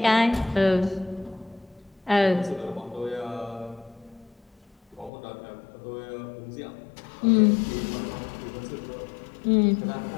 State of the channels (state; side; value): drops out; right; at 5.1 s